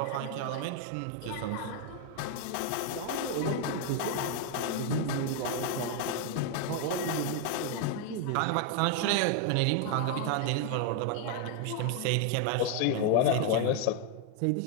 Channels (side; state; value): both; different; correlation 0.00